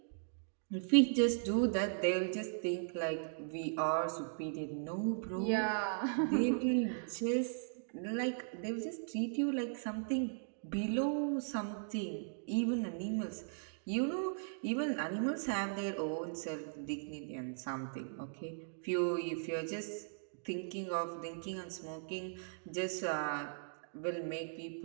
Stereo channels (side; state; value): left; silent; digital silence